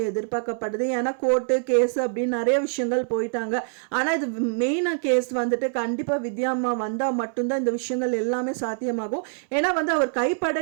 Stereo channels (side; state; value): left; silent; 62 dB below the other